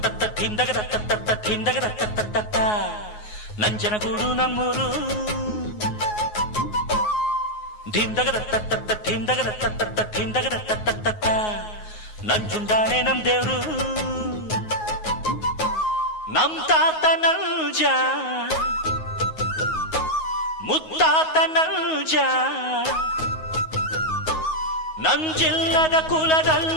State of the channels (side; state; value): right; late; 9.5 ms